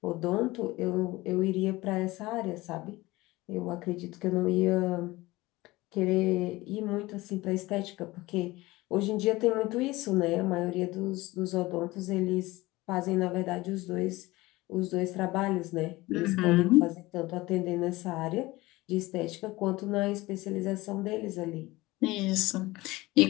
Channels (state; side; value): quieter; right; 20.0 dB